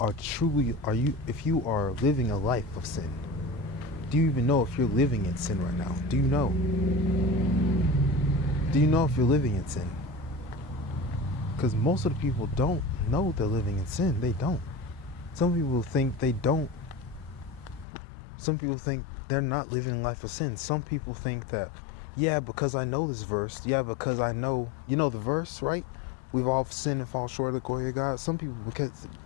if you are living a life of sin? Do you even know if you're living in sin right now? Do you know? Do you know if you're living in sin? Because most of the people don't know they're living in sin. They don't. Some people think they don't. Some people think they're not living a life of sin. Some people think that, yeah, because I know this verse. Yeah, because I know, you know the verse, right? We've all sinned and fall short of the glory of God. Some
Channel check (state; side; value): drops out; right; at 17.9 s